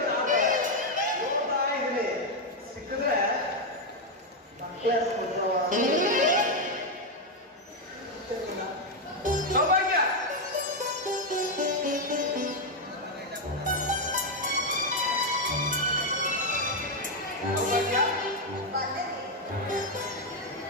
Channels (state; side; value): normal; both; correlation 0.03